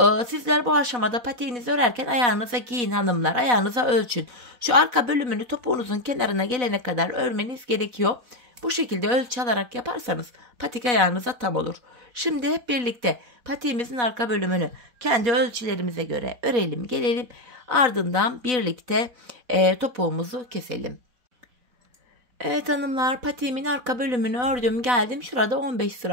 Sizler bu aşamada patiğinizi örerken ayağınıza giyin hanımlar. Ayağınıza ölçün. Şu arka bölümünü topuğunuzun kenarına gelene kadar örmeniz gerekiyor. Bu şekilde ölçü alarak yaparsanız patik ayağınıza tam olur. Şimdi hep birlikte patiğimizin arka bölümünü kendi ölçülerimize göre örelim, gelelim. Ardından birlikte topuğumuzu keselim. Evet hanımlar, patiğimin arka bölümünü ördüm, geldim. Şurada 15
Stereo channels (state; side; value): late; left; 4.1 ms